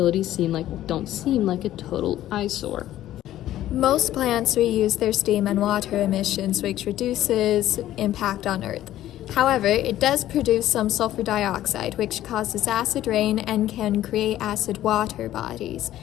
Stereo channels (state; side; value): quieter; right; 13.4 dB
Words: don't seem like a total eyesore. Most plants reuse their steam and water emissions, which reduces impact on Earth. However, it does produce some sulfur dioxide, which causes acid rain and can create acid water bodies.